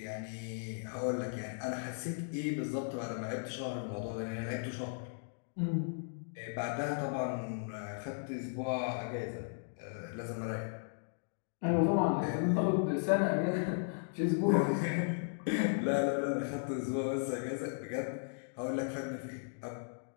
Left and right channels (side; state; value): right; silent; digital silence